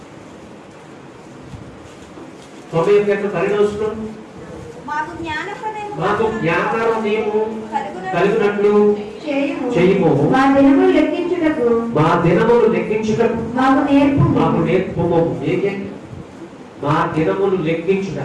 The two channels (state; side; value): identical; both; correlation 1.00